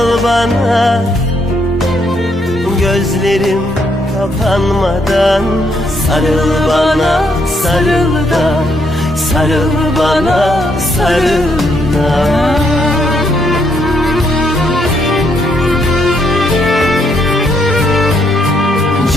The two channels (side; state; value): both; normal; correlation 0.74